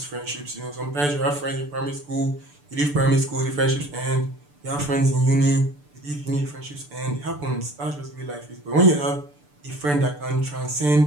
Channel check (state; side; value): late; left; 6.8 ms